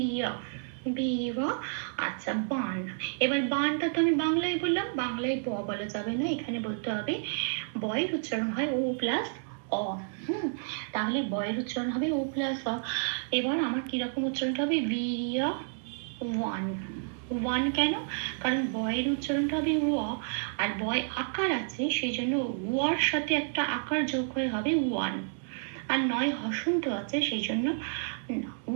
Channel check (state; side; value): silent; left; 58 dB below the other